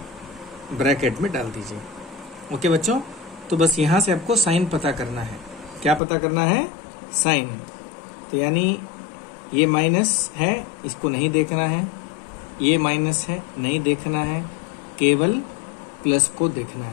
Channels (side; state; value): right; drops out; at 6.0 s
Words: ब्रैकेट में डाल दीजिए, ओके बच्चों। तो बस यहां से आपको साइन पता करना है। क्या पता करना है? साइन। तो यानी ये माइनस है, इसको नहीं देखना है, ये माइनस है, नहीं देखना है, केवल प्लस को देखना